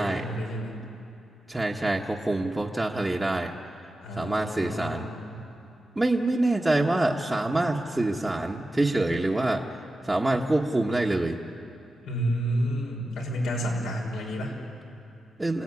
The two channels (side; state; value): both; normal; correlation 0.92